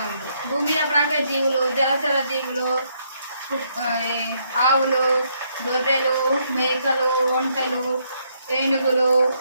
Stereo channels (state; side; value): inverted; both; correlation -0.73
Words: జీవులు, జలచర జీవులు, ఆవులు, గొర్రెలు, మేకలు, ఒంటెలు, ఏనుగులు,